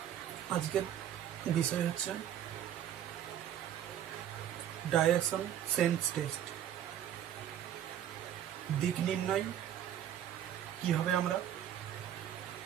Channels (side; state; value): left; quieter; 10.6 dB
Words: আজকের বিষয় হচ্ছে ডাইরেকশন সেন্স টেস্ট। দিক নির্ণয় কীভাবে আমরা